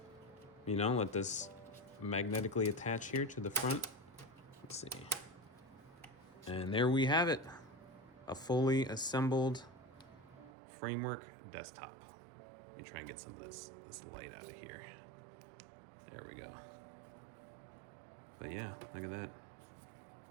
know, let this magnetically attach here to the front. Let's see. And there we have it. A fully assembled framework desktop. Let me try and get some of this light out of here. There we go. But yeah, look at that.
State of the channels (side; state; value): left; drops out; at 10.5 s